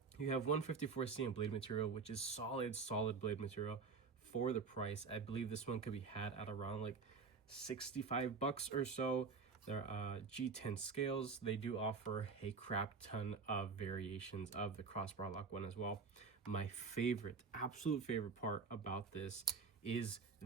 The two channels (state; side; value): quieter; left; 5.0 dB